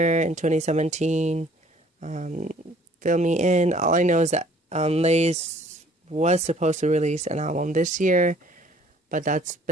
in 2017, fill me in. All I know is that Lay's was supposed to release an album this year, but that's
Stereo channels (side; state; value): both; normal; correlation 0.57